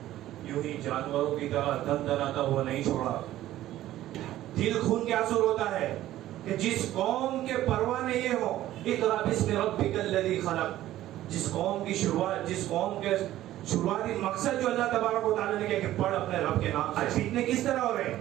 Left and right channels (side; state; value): left; quieter; 14.0 dB